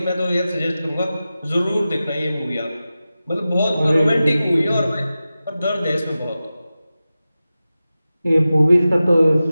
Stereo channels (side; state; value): both; inverted; correlation -0.95